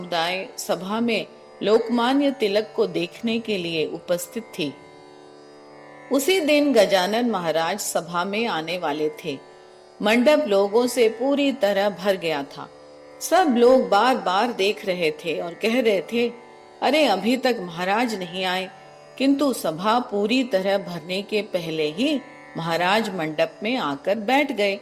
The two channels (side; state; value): both; identical; correlation 1.00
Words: सभा में लोकमान्य तिलक को देखने के लिए उपस्थित थी। उसी दिन गजानन महाराज सभा में आने वाले थे। मंडप लोगों से पूरी तरह भर गया था। सब लोग बार बार देख रहे थे और कह रहे थे, अरे अभी तक महाराज नहीं आए। किंतु सभा पूरी तरह भरने के पहले ही महाराज मंडप में आकर बैठ गए,